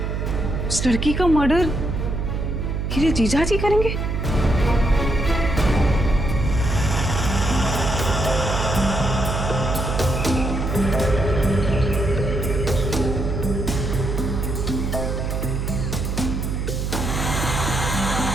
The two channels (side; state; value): right; noise; hum, 2 dB below the sound